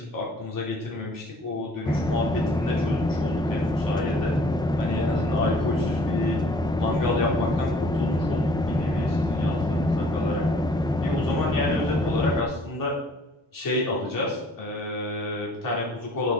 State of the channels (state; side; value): normal; both; correlation 0.55